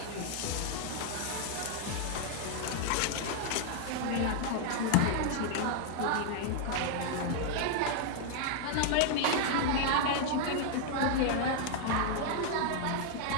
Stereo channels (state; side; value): different; both; correlation 0.00